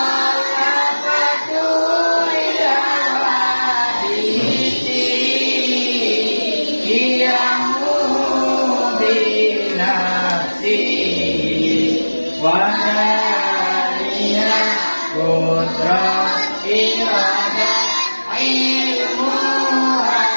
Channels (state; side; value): inverted; both; correlation -1.00